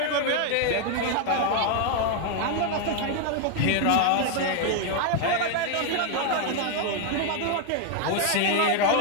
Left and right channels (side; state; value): both; different; correlation 0.00